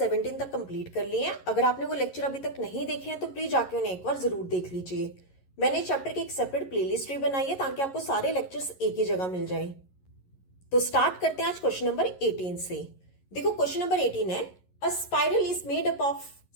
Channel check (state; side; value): late; right; 11 ms